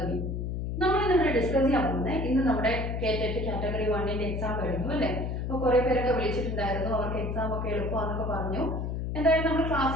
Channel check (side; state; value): left; noise; hum, 2 dB below the sound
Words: നമ്മൾ ഇന്നിവിടെ discuss ചെയ്യാൻ പോകുന്നത് ഇന്ന് നമ്മുടെ കേറ്ററ്റ് കാറ്റഗറി 1ന്റെ എക്സാം കഴിഞ്ഞു അല്ലേ. അപ്പോൾ കുറേ പേരൊക്കെ വിളിച്ചിട്ടുണ്ടായിരുന്നു, അവർക്ക് എക്സാം ഒക്കെ എളുപ്പമാണെന്നൊക്കെ പറഞ്ഞു. എന്തായാലും നമ്മൾ